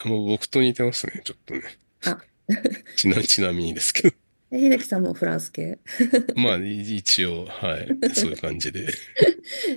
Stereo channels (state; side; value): inverted; both; correlation -1.00